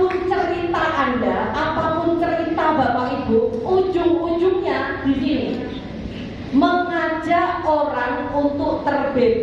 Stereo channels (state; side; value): identical; both; correlation 1.00